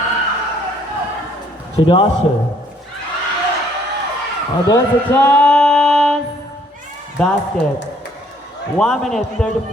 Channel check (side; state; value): both; normal; correlation 0.63